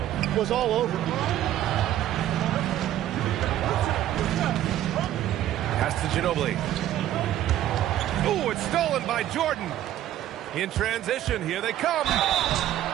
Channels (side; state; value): left; quieter; 12.6 dB